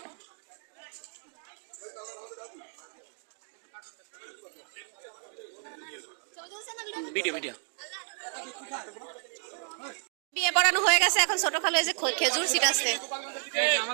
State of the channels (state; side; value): silent; left; 57 dB below the other